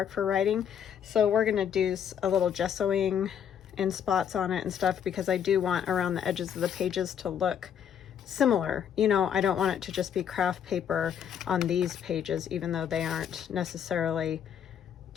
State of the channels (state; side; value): quieter; right; 8.7 dB